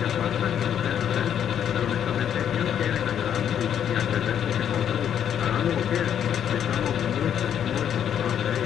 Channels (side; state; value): right; quieter; 9.2 dB